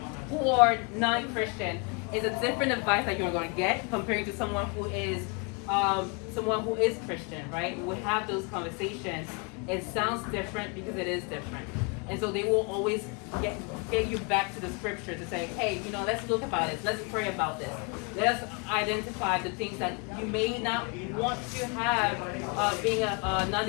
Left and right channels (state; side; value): quieter; right; 33.1 dB